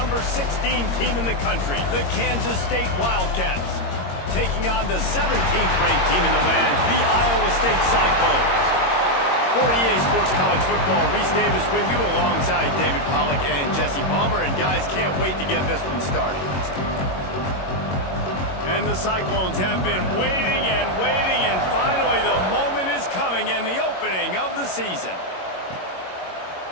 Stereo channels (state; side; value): late; right; 22 ms